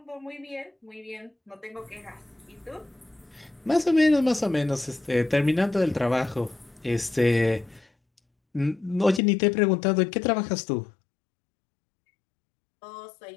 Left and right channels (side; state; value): right; drops out; at 9.2 s